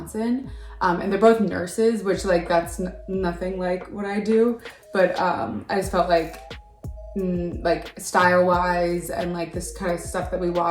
and they're both nurses, which like that's nothing like what I do, but I just felt like style wise and like this kind of stuff that we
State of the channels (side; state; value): both; identical; correlation 1.00